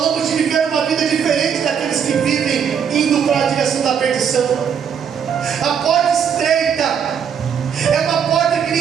de viver uma vida diferente daqueles que vivem indo para a direção da perdição. A porta estreita é uma porta que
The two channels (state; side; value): quieter; left; 7.6 dB